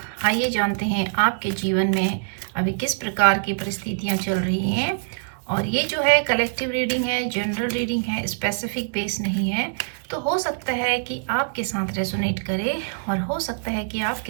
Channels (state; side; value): silent; left; 63 dB below the other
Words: आइए जानते हैं आपके जीवन में अभी किस प्रकार की परिस्थितियां चल रही हैं। और ये जो है कलेक्टिव रीडिंग है, जनरल रीडिंग है, स्पेसिफिक बेस नहीं है। तो हो सकता है कि आपके साथ रेजोनेट करे और हो सकता है कि